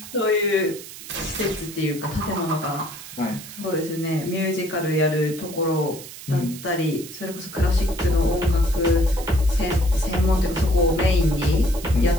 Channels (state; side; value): noise; right; hiss, 14 dB below the sound